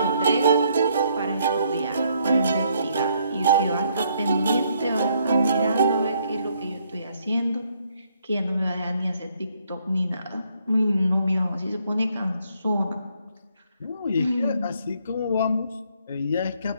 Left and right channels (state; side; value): inverted; both; correlation -0.69